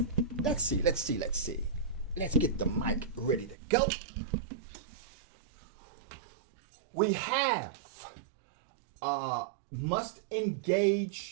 Let's see. Let's get the mic ready to go. We have must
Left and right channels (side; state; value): left; drops out; at 3.6 s